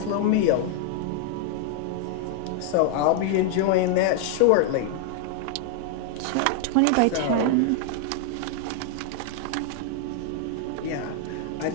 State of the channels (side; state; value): both; different; correlation 0.00